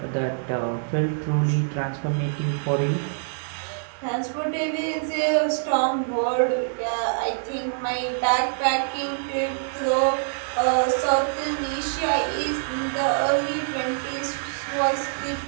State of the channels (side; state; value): left; silent; 62 dB below the other